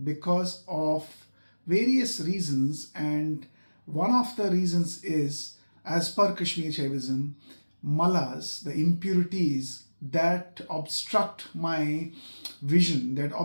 because of various reasons. And one of the reasons is, as per Kashmir Shaivism, malas, the impurities that obstruct my vision, that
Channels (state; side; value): inverted; both; correlation -1.00